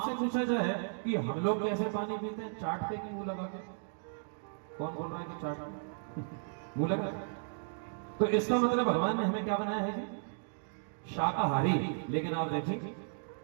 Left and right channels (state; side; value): silent; left; digital silence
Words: पूछा जाए कि हम लोग कैसे पानी पीते हैं, चाट के कि मुंह लगा के? कौन बोल रहा है कि चाट मुंह लगा? तो इसका मतलब भगवान ने हमें क्या बनाया है जी? शाकाहारी। लेकिन आप देखिए